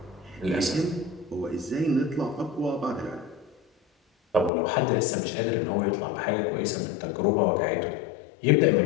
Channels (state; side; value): drops out; right; at 4.5 s